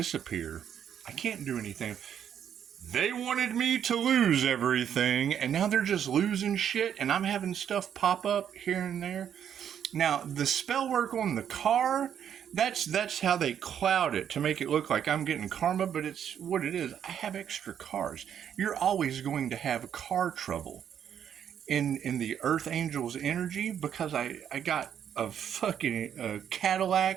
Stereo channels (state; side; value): quieter; left; 9.0 dB